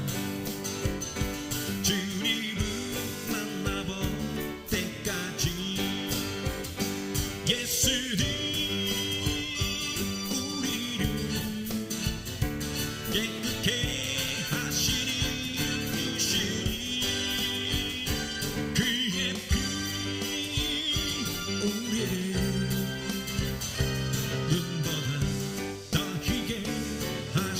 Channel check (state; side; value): identical; both; correlation 1.00